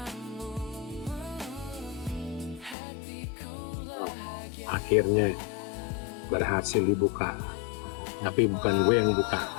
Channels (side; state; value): right; drops out; at 2.8 s